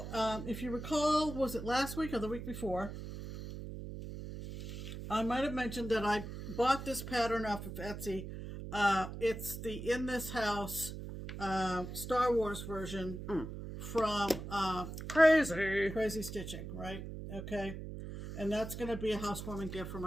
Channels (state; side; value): noise; right; hum, 8 dB below the sound